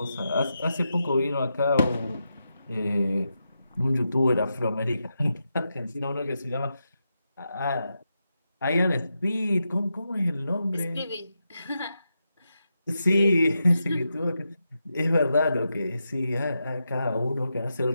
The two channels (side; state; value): both; inverted; correlation -0.87